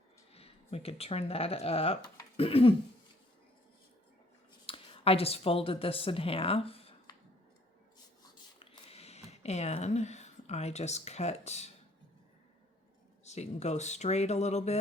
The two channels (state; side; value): normal; both; correlation 0.61